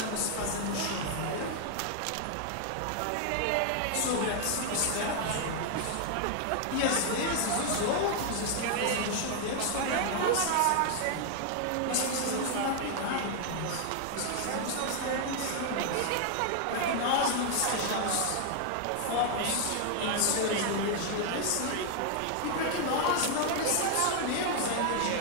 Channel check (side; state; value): both; different; correlation 0.00